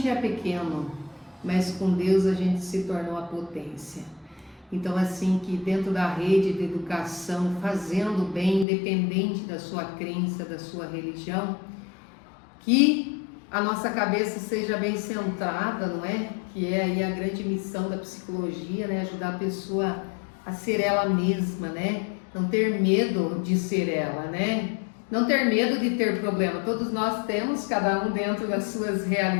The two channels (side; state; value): right; drops out; at 8.7 s